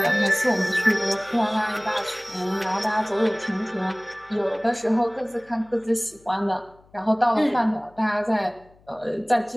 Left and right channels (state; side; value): noise; left; hum, 29 dB below the sound